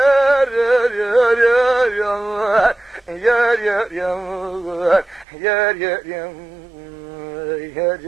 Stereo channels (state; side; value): drops out; left; at 5.2 s